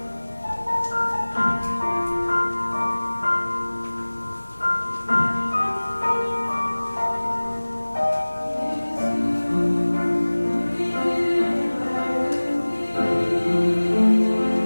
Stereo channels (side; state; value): both; inverted; correlation -1.00